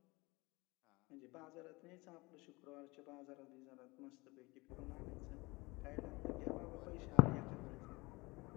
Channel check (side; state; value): right; quieter; 24.1 dB